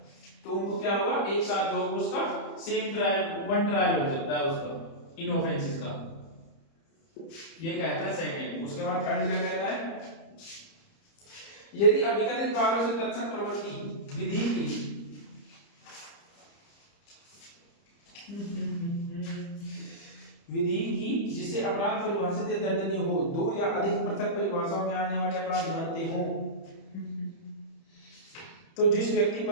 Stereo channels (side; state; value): right; late; 30 ms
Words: तो उनको क्या होगा, एक साथ जो होगा उसका सेम ट्रायल, वन ट्रायल हो सकता है उसका इन ऑफेंसेस का, ये कहता है सेकंड। उसके बाद थर्ड क्या कहता है, यदि अभिकथित कार्यों से तत्सम प्रवृत्ति विधि की जिससे अपराध परिभाषित या दंडनीय हो, दो या अधिक पृथक परिभाषाओं में आने वाले अपराध बनते हो, तो जिस व्यक्ति